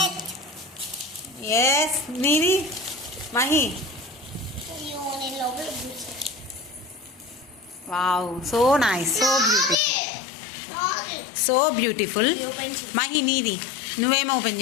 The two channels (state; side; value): drops out; right; at 9.8 s